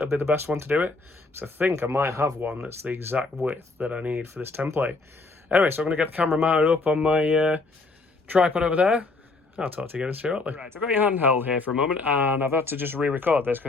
will be the best one to do it. So I think I might have one that's the exact width that I need for this template. Anyway, so I'm going to get the camera mounted up on my tripod over there. I'll talk to you again shortly. Right, I've got your handheld here for a moment, and I've had to just re-record this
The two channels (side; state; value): right; quieter; 3.5 dB